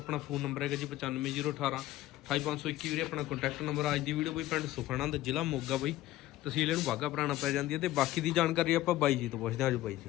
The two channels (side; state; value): right; quieter; 15.3 dB